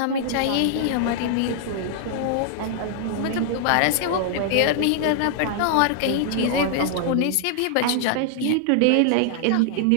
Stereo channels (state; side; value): different; both; correlation -0.01